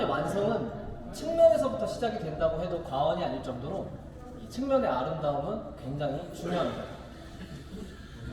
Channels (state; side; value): identical; both; correlation 1.00